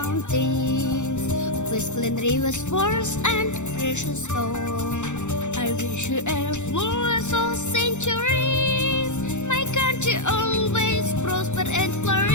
with clean rivers, forests, and precious stone. I wish you a flawless of centuries. My country always prosper and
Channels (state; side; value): late; right; 0.84 ms